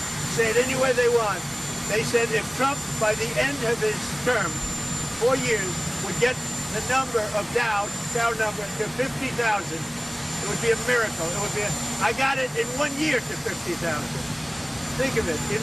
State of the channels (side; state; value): both; identical; correlation 1.00